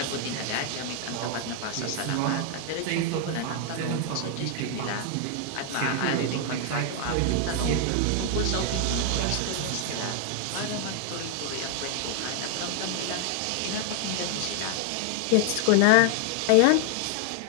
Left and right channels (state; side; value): different; both; correlation 0.00